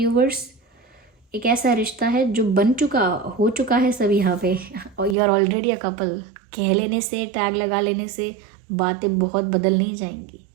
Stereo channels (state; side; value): drops out; left; at 5.2 s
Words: एक ऐसा रिश्ता है जो हो चुका है सब यहाँ पे, और you are already a couple. कह लेने से, टैग लगा लेने से बातें बहुत बदल नहीं जाएंगी,